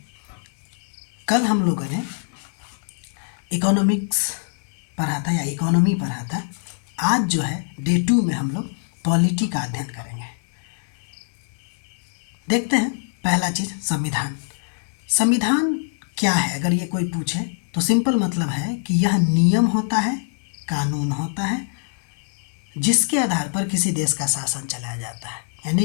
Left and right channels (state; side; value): silent; right; 63 dB below the other